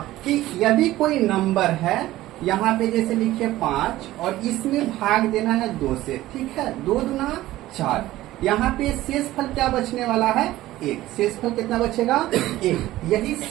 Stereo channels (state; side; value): quieter; left; 15.9 dB